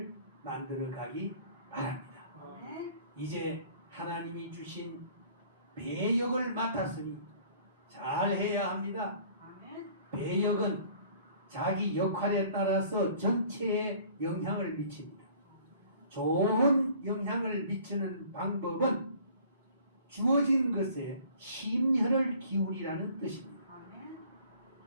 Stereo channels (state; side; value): inverted; both; correlation -0.52